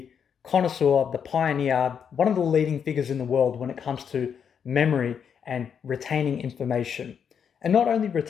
connoisseur, the pioneer, one of the leading figures in the world when it comes to memory and retaining information. And not only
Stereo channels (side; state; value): right; quieter; 7.5 dB